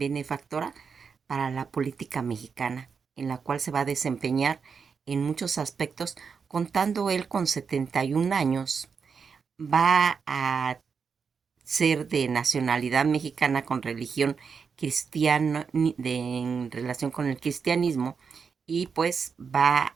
para la política mexicana, en la cual se va a desempeñar en muchos aspectos, contando él con 71 años, va a ser de nacionalidad mexicana con religión cristiana, en relación con el cristianismo, y pues va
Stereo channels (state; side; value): quieter; left; 5.9 dB